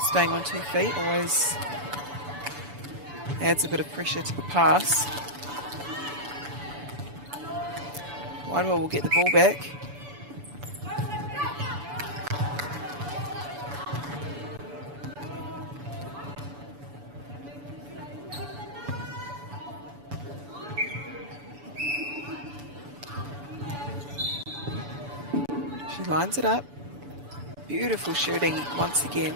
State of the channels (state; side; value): late; left; 7.0 ms